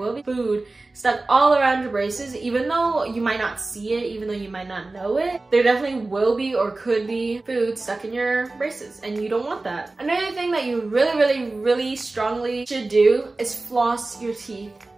be food stuck all around your braces. Even though you might not see it, even though you might not know it, there definitely will be or could be food stuck in your braces, and you don't want that. Another thing that you really strongly should do is floss your teeth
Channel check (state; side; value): quieter; left; 3.2 dB